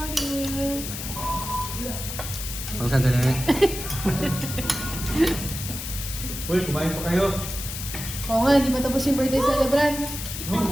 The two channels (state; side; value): noise; left; hiss, 7 dB below the sound